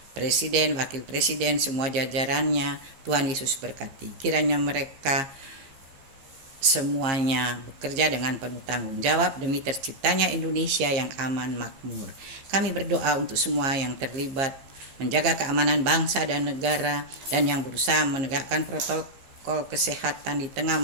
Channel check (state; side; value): late; left; 15 ms